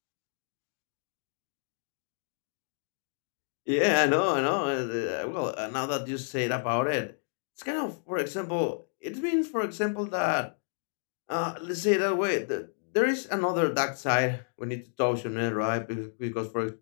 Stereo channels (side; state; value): right; silent; digital silence